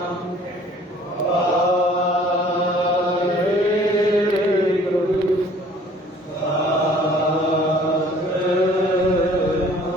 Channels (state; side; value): normal; both; correlation 0.54